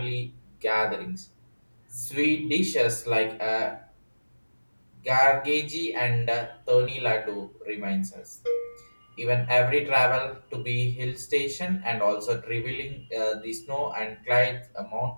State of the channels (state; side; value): inverted; both; correlation -1.00